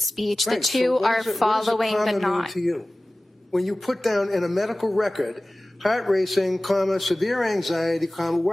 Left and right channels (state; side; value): normal; both; correlation 0.97